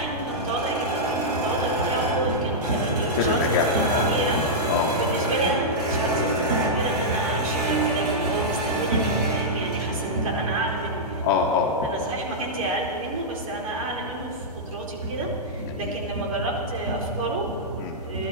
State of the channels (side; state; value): both; normal; correlation -0.09